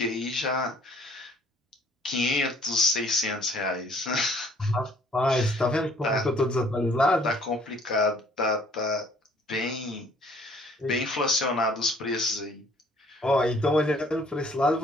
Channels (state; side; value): normal; both; correlation 0.58